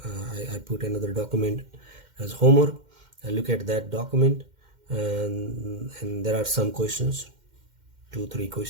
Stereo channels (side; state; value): left; late; 2.1 ms